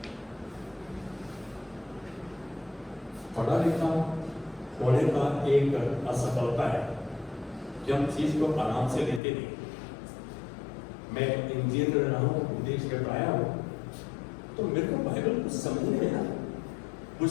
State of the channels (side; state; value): right; drops out; at 9.2 s